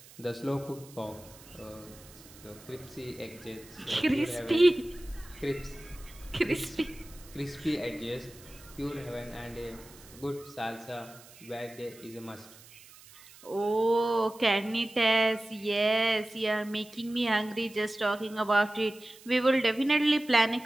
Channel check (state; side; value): noise; right; hiss, 21 dB below the sound